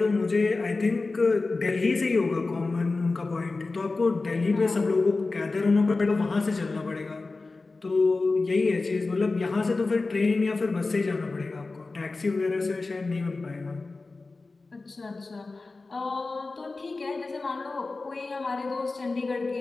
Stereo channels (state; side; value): quieter; right; 3.6 dB